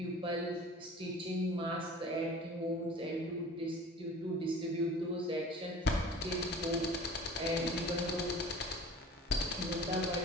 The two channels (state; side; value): normal; both; correlation 0.43